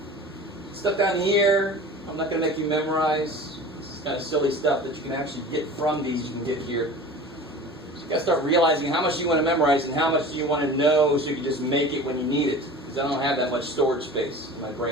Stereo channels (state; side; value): normal; both; correlation 0.37